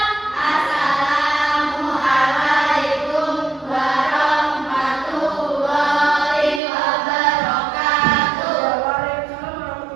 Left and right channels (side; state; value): left; drops out; at 6.6 s